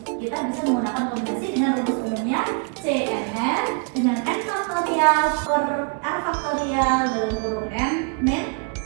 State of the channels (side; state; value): left; quieter; 35.1 dB